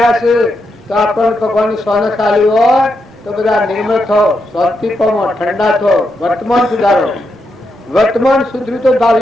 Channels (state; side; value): normal; both; correlation 0.83